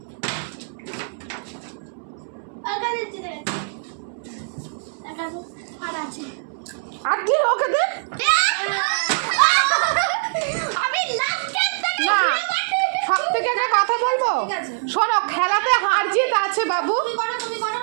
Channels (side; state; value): left; silent; 64 dB below the other